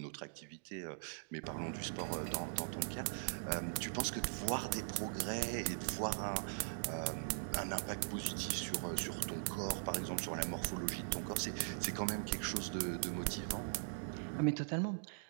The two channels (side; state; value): left; silent; digital silence